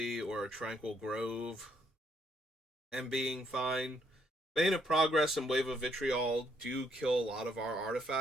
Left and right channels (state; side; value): normal; both; correlation 0.72